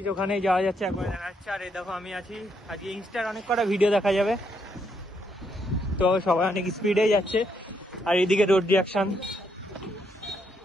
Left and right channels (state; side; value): normal; both; correlation 0.75